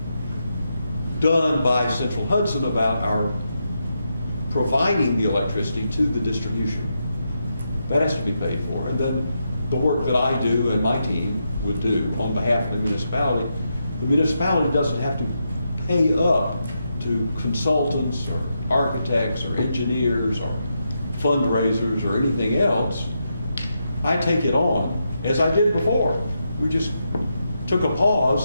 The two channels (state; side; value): inverted; both; correlation -0.84